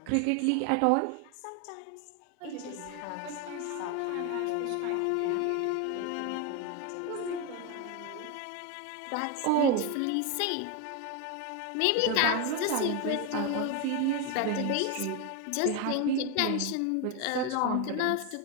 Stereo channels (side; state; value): both; different; correlation 0.02